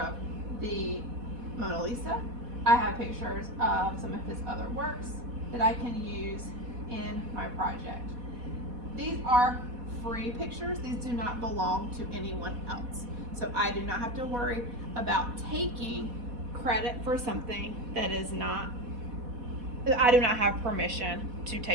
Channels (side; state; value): left; late; 4.1 ms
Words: the Mona Lisa. I have pictures of some of his other works that I can use in my project. These are free pictures. These do not belong to anyone else. So I do not have to worry about taking credit for something that I do not have permission to